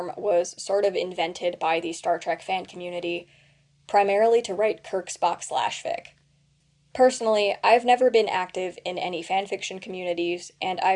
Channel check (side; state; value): both; identical; correlation 1.00